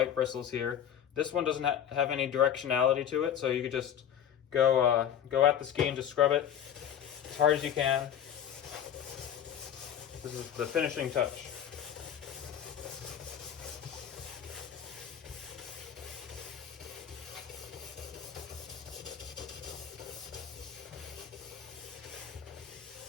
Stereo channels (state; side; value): quieter; right; 9.4 dB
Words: bristles here. This one doesn't have any directionality to it, so you could just go at the ski and just scrub it as hard as you can. This is the finishing touch.